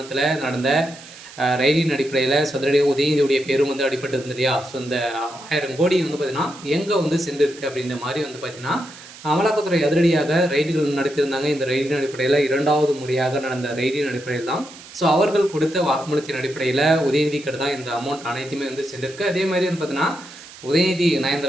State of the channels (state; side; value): noise; right; hiss, 18 dB below the sound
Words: நடந்த ரைடின் அடிப்படையில் சதுரடியாக உதயநிதியுடைய பேரும் அடிபட்டு இருந்தது இல்லையா. ஸோ இந்த 1000 கோடி பார்த்தீங்கன்னா எங்கே சென்றிருக்கு அப்படின்ற மாதிரி பார்த்தீங்கன்னா அமலாக்கத்துறை அதிரடியாக ரைடுகள் நடத்தியிருந்தாங்க. இந்த ரைடின் அடிப்படையில் 2வது முறையாக நடந்த ரைடின் அடிப்படையில் தான் ஸோ அவர்கள் கொடுத்த வாக்குமூலத்தின் அடிப்படையில் உதயநிதிக்கு தான் இந்த அமௌண்ட் அனைத்துமே சென்றிருக்கு. அதே மாதிரி பார்த்தீங்கன்னா உதயநிதி